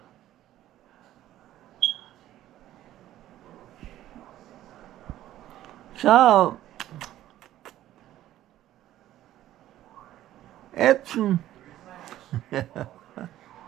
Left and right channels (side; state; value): left; quieter; 13.5 dB